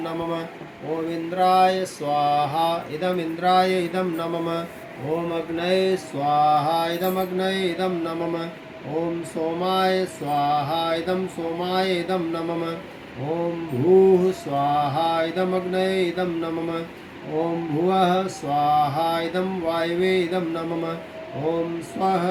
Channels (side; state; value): both; identical; correlation 1.00